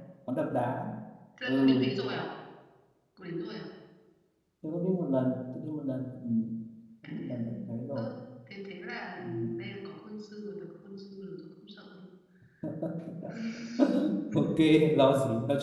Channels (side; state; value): both; identical; correlation 1.00